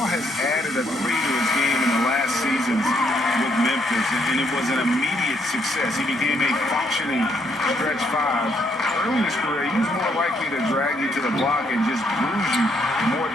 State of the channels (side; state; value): both; normal; correlation 0.72